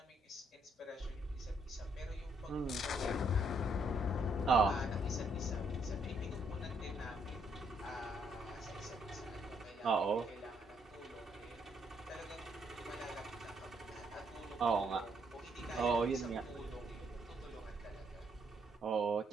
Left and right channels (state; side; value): normal; both; correlation 0.72